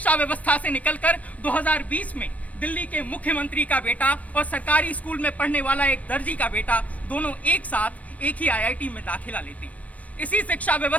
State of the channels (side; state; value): right; late; 0.069 ms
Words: व्यवस्था से निकलकर 2020 में दिल्ली के मुख्यमंत्री का बेटा और सरकारी स्कूल में पढ़ने वाला एक दर्जी का बेटा दोनों एक साथ एक ही IIT में दाखिला लेते हैं। इसी शिक्षा